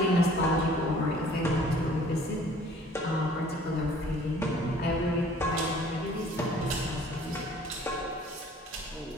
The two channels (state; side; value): normal; both; correlation 0.53